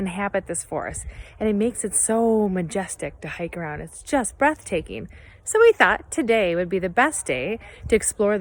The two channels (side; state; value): both; identical; correlation 1.00